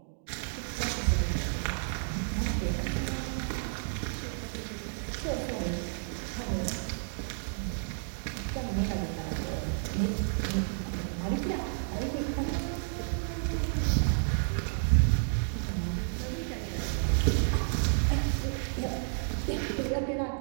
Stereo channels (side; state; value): left; silent; digital silence